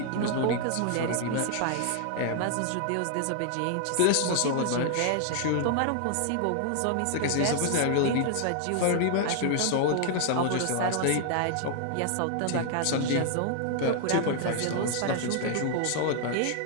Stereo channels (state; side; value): different; both; correlation 0.00